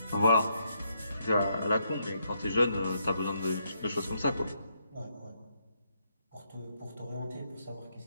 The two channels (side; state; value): both; inverted; correlation -0.76